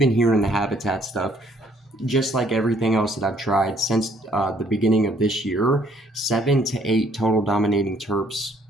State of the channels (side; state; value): both; normal; correlation 0.64